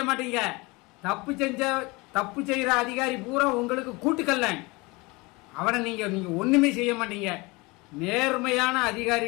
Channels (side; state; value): right; quieter; 24.7 dB